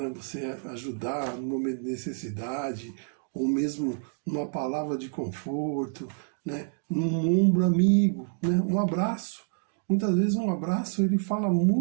Você ajudar no momento de necessidade, ou mesmo numa palavra de conforto, né? Num ombro amigo, né? Um abraço. Muitas vezes um abraço ele fala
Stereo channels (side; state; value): left; silent; 56 dB below the other